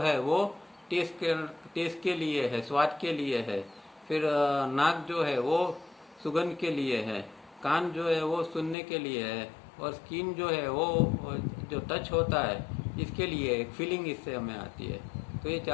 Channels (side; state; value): right; drops out; at 8.8 s